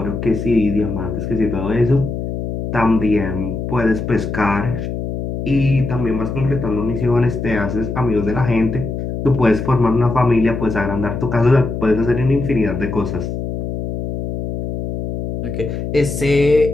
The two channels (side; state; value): left; noise; hum, 5 dB below the sound